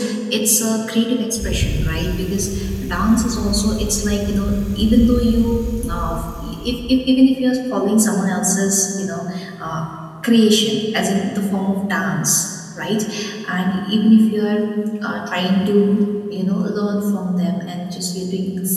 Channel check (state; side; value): identical; both; correlation 1.00